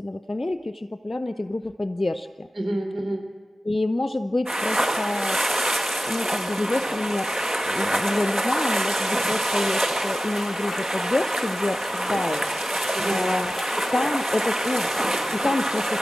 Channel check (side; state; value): both; normal; correlation 0.94